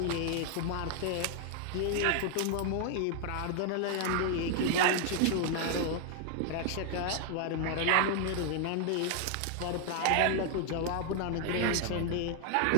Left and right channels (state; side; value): different; both; correlation 0.00